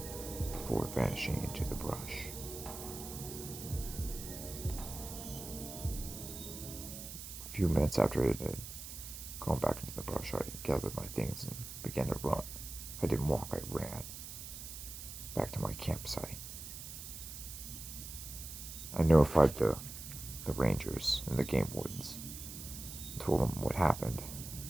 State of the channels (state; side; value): noise; right; hiss, 10 dB below the sound